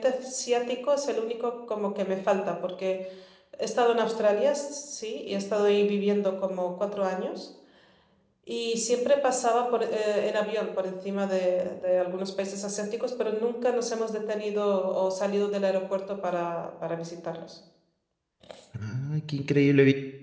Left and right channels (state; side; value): identical; both; correlation 1.00